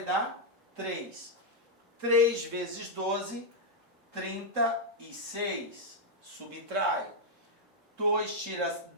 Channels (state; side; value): normal; both; correlation -0.03